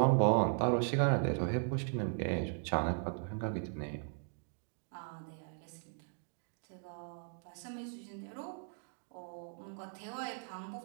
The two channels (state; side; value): silent; left; 53 dB below the other